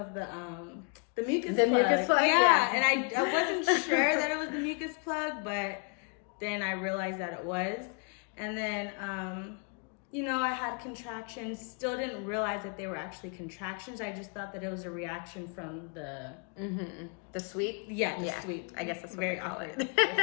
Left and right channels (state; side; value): quieter; right; 39.2 dB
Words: the mucus plug. Mucus plug, yeah. And I wasn't sure that it was the mucus plug, but then I realized that it was. And then, I had contractions. Still didn't realize that they were actually contractions. I just thought that it was a reaction from the... The sweep? Yeah, the sweep. I guess that's what Very they call awkward. it.